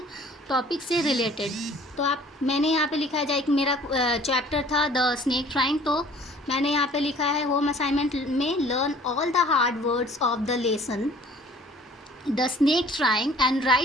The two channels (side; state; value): both; normal; correlation 0.52